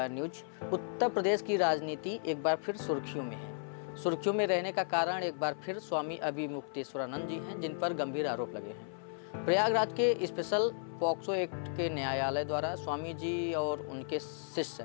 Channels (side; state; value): right; silent; 55 dB below the other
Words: news. Uttar Pradesh की राजनीति एक बार फिर सुर्खियों में है। सुर्खियों में रहने का कारण एक बार फिर स्वामी अभिमुक्तेश्वरानंद जी हैं, जिन पर गंभीर आरोप लगे हैं। प्रयागराज के स्पेशल पॉक्सो एक्ट के न्यायालय द्वारा स्वामी जी और उनके शिष्य